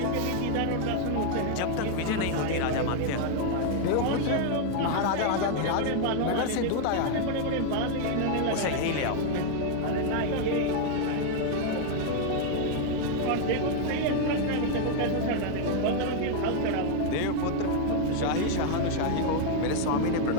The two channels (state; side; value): different; both; correlation 0.00